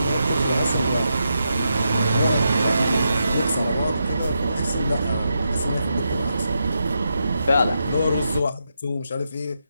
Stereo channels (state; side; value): inverted; both; correlation -0.84